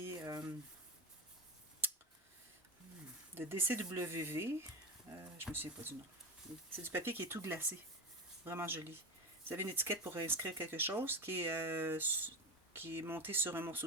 de DCWV. Je me souviens pas du nom. C'est du papier qui est tout glacé. Vraiment joli. Vous avez une étiquette pour inscrire quelque chose qui est monté sur un morceau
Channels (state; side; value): normal; both; correlation 0.21